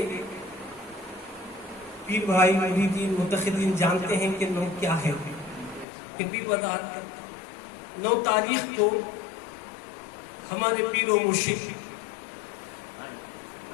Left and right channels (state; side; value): drops out; right; at 5.9 s